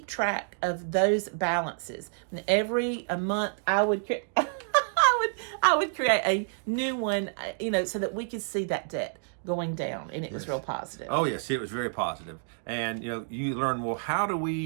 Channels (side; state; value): left; silent; digital silence